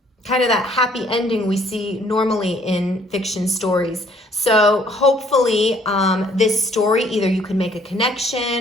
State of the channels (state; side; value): normal; both; correlation 0.61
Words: kind of that happy ending we see normally in fiction stories. So hopefully this story, either you can make a